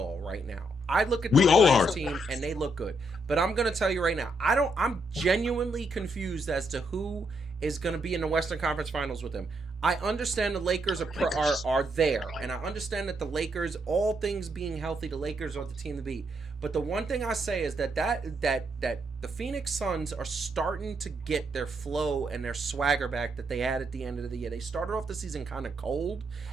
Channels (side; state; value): both; normal; correlation 0.77